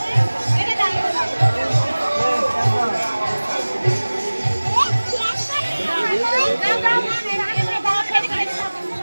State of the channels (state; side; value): inverted; both; correlation -1.00